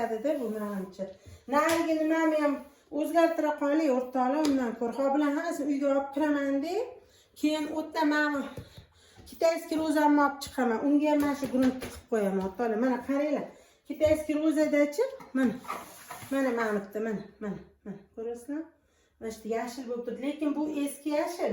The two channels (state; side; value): identical; both; correlation 1.00